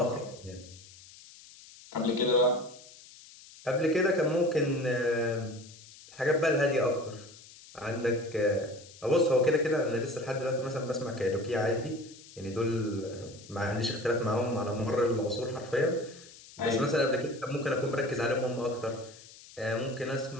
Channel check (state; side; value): noise; left; hiss, 20 dB below the sound